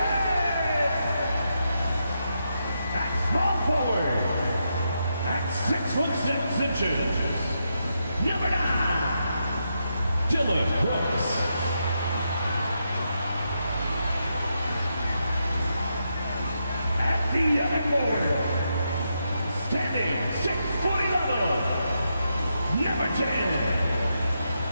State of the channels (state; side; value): inverted; both; correlation -0.83